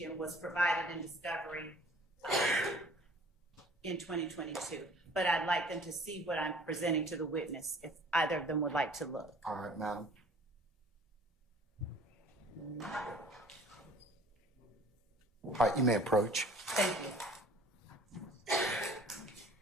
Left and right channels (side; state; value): both; normal; correlation 0.50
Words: was provided in discovery in 2022. But I'd like them to see what I'm presenting to the witness, if either of them would like to look. All right, madam. All right, you may approach. Thank you.